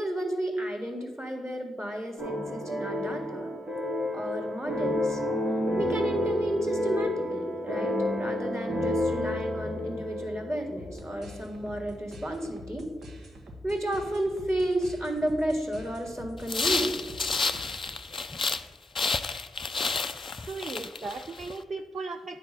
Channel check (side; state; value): both; normal; correlation 0.82